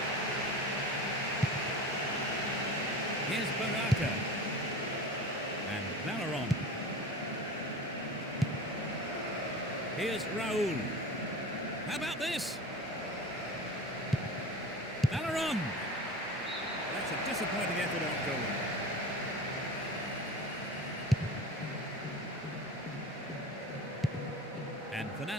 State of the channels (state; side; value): normal; both; correlation 0.33